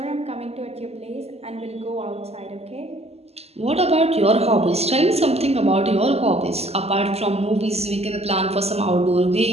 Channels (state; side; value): late; left; 0.30 ms